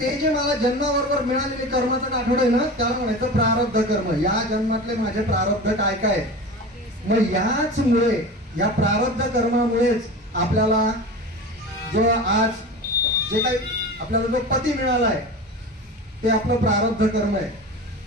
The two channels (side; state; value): both; normal; correlation 0.31